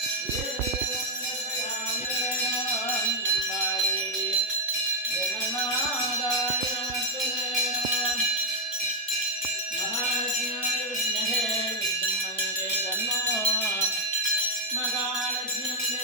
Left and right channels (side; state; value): both; normal; correlation 0.01